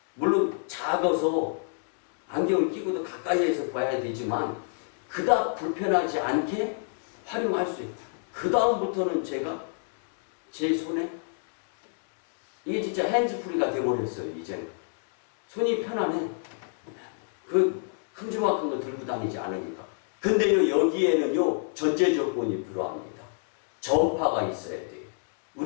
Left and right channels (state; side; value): silent; right; digital silence